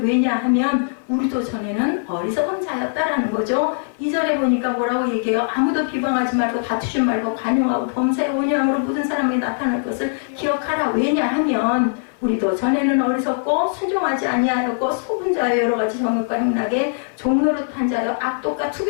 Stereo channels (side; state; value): right; silent; 56 dB below the other